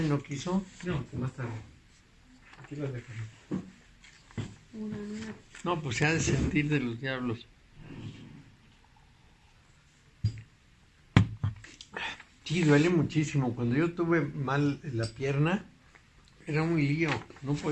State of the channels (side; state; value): both; identical; correlation 1.00